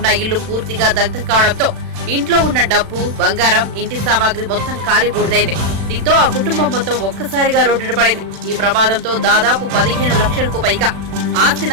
ఇల్లు పూర్తిగా దగ్ధం కావడంతో ఇంట్లో ఉన్న డబ్బు, బంగారం, ఇంటి సామాగ్రి మొత్తం కాలి బూడిదైంది. దీంతో ఆ కుటుంబం మొత్తం ఒక్కసారిగా రోడ్డున పడింది. ఈ ప్రమాదంతో దాదాపు 15 లక్షలకు పైగా ఆస్తి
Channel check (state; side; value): late; left; 36 ms